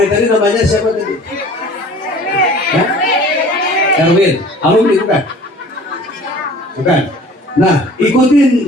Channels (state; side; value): normal; both; correlation 0.47